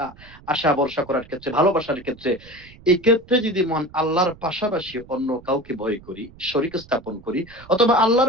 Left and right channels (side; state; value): right; noise; rumble, 22 dB below the sound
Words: আশা ভরসা করার ক্ষেত্রে, ভালোবাসার ক্ষেত্রে, এই ক্ষেত্রে যদি মহান আল্লাহর পাশাপাশি অন্য কাউকে ভয় করি, শরীক স্থাপন করি, অথবা